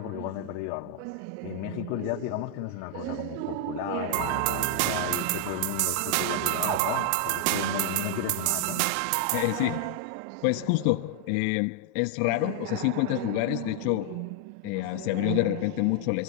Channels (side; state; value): both; different; correlation 0.00